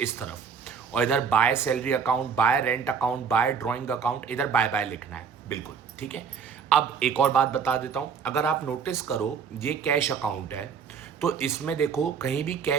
तरफ। और इधर by salary account, by rent account, by drawing account, इधर बाय बाय लिखना है, बिल्कुल ठीक है। अब एक और बात बता देता हूँ, अगर आप नोटिस करो, ये कैश अकाउंट है, तो इसमें देखो कहीं भी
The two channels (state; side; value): quieter; left; 6.5 dB